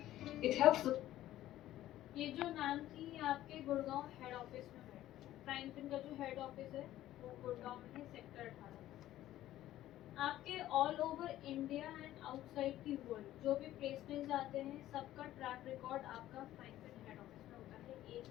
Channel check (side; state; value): right; quieter; 13.9 dB